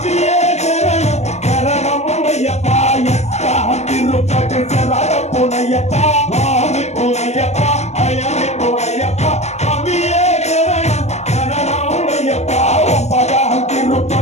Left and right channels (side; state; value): right; late; 0.32 ms